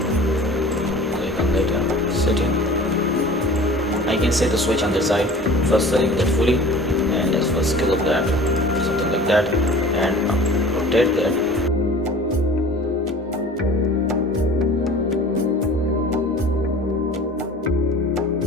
click on that setting. I can set the switch on the side. First select that fully, and let's first scale up that, something like that, and rotate that.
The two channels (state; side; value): normal; both; correlation 0.43